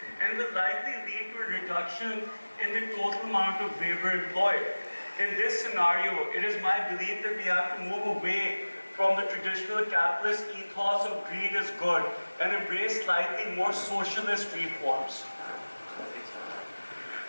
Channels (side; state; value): both; inverted; correlation -1.00